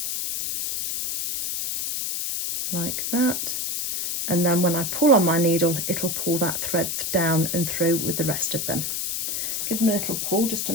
like that. And then when I pull on my needle, it'll pull that thread down and through with the rest of them. Give them a little pull just to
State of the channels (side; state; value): left; noise; hiss, 2 dB below the sound